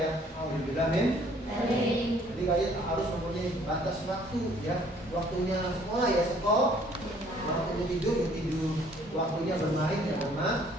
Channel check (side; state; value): both; normal; correlation 0.59